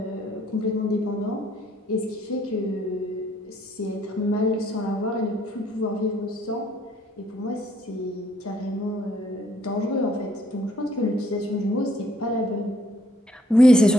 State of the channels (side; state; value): both; normal; correlation 0.66